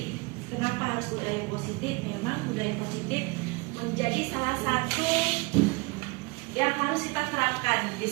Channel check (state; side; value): quieter; left; 26.7 dB